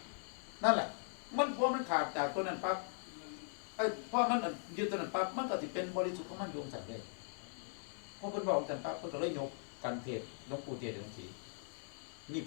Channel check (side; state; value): right; silent; 51 dB below the other